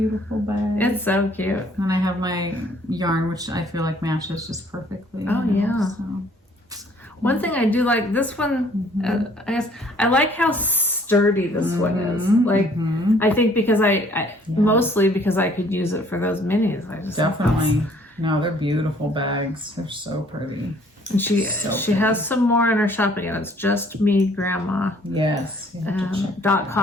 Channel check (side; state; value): both; normal; correlation 0.59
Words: bag. It's so cute. And I have my yarn, which I feel like matches just perfectly. Oh, yeah. So. One thing I do like, this one, I guess, I like how sturdy this one is. Like, I think because mostly because I could use it for those minis. Definitely. No, they're beautiful bags. They're so pretty. And she has some more in her shopping, and it's just me, Grandma. Yes.